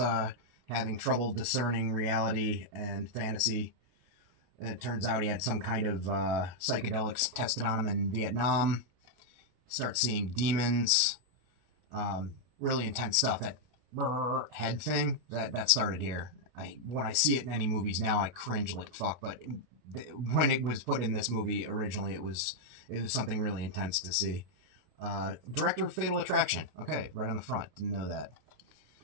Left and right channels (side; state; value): left; late; 32 ms